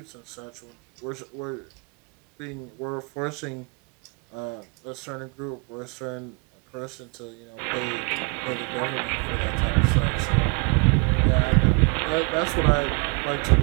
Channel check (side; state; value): left; quieter; 32.8 dB